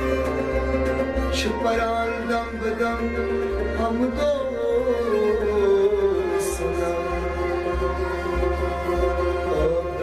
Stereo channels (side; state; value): left; noise; rumble, 22 dB below the sound